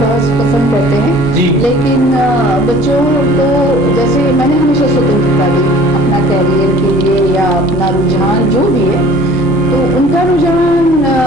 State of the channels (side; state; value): both; normal; correlation 0.49